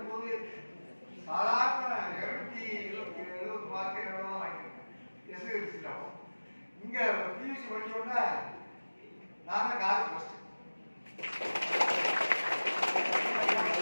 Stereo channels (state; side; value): inverted; both; correlation -1.00